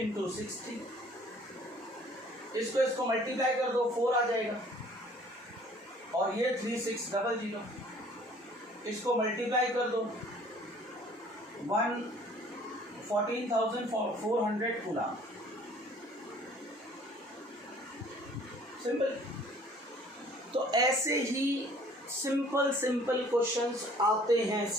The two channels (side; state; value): both; normal; correlation 0.54